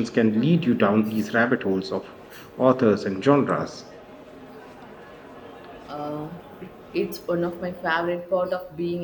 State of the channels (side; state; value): both; identical; correlation 1.00